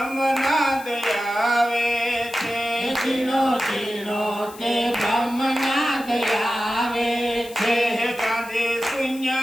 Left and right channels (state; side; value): noise; left; hiss, 18 dB below the sound